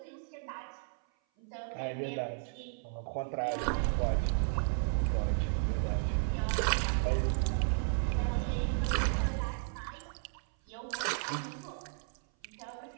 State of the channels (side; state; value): left; silent; 55 dB below the other